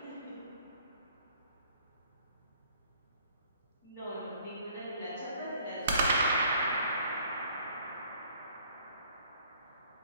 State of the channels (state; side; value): inverted; both; correlation -0.59